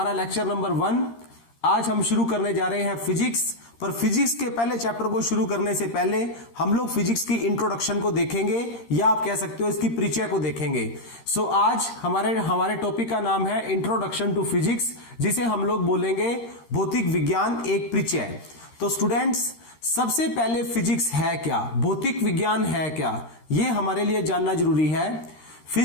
लेक्चर नंबर 1। आज हम शुरू करने जा रहे हैं फिजिक्स। पर फिजिक्स के पहले चैप्टर को शुरू करने से पहले हम लोग फिजिक्स की इंट्रोडक्शन को देखेंगे, या आप कह सकते हो इसकी परिचय को देखेंगे। सो आज हमारे टॉपिक का नाम है इंट्रोडक्शन टू फिजिक्स, जिसे हम लोग बोलेंगे भौतिक विज्ञान एक परिचय। तो स्टूडेंट्स, सबसे पहले फिजिक्स है क्या, भौतिक विज्ञान है क्या, यह हमारे लिए जानना जरूरी है।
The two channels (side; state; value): right; late; 13 ms